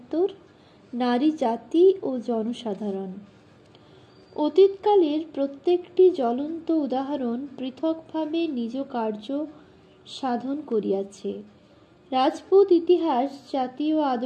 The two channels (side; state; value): both; identical; correlation 1.00